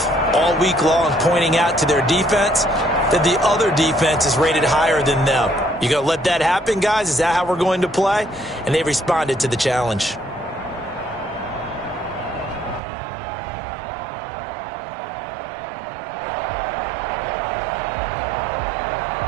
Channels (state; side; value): drops out; left; at 12.8 s